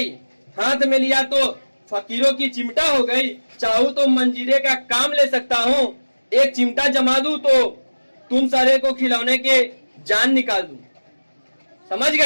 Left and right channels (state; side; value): inverted; both; correlation -1.00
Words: हाथ में लिया तो फकीरों की चिमटा हो गई। चाहूं तो मंजीरे का काम ले सकता हूँ, एक चिमटा जमा दूं तो तुम सारे को खिलौने के जान निकाल दूं। समझ